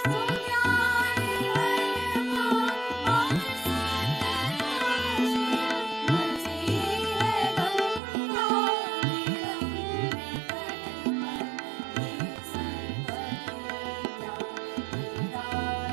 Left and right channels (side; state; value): left; drops out; at 8.0 s